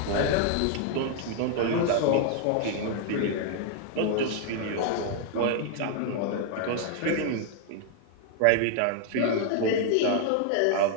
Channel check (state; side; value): different; both; correlation 0.00